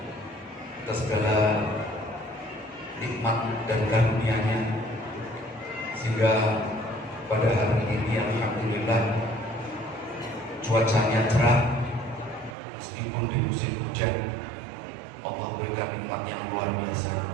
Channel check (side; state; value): left; drops out; at 12.6 s